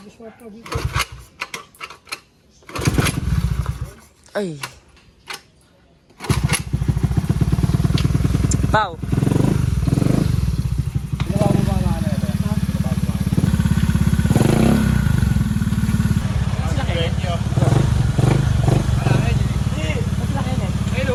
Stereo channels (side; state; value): both; identical; correlation 1.00